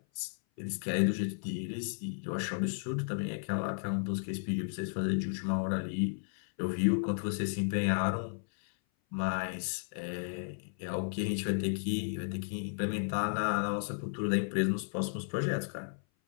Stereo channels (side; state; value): right; silent; 55 dB below the other